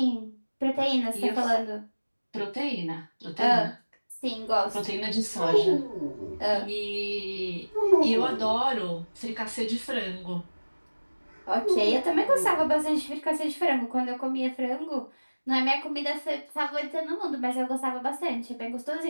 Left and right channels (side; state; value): both; inverted; correlation -1.00